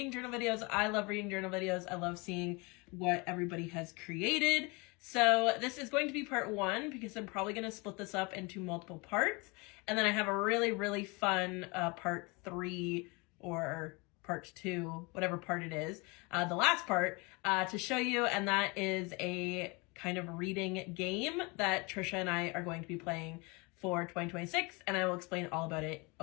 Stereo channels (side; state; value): right; quieter; 27.7 dB